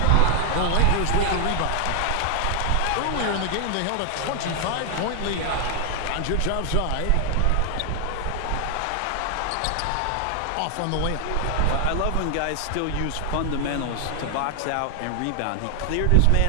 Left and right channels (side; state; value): both; different; correlation 0.00